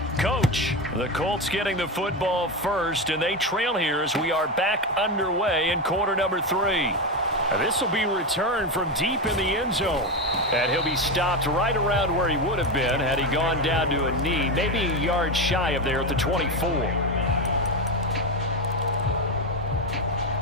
Coach, the Colts getting the football first, and they trail here as we are back underway in quarter number 3. This will be returned from deep in the end zone. And he'll be stopped right around where he would have been had he gone down to a knee, maybe a yard shy of there at the 24.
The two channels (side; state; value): both; normal; correlation 0.14